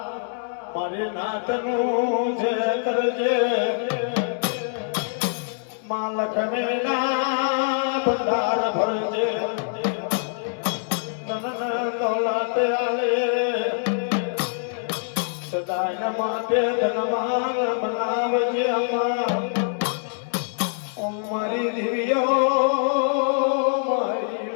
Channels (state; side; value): silent; right; digital silence